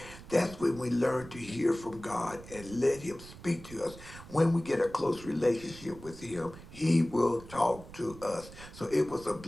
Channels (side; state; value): right; noise; rumble, 16 dB below the sound